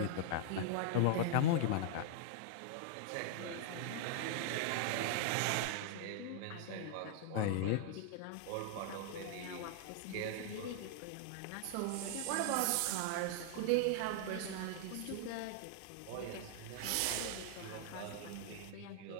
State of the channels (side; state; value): both; different; correlation -0.01